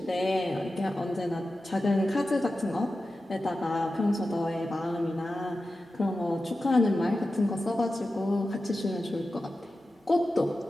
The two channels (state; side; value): normal; both; correlation 0.93